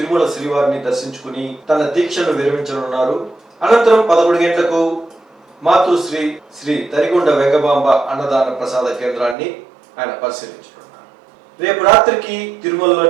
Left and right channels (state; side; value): drops out; left; at 9.3 s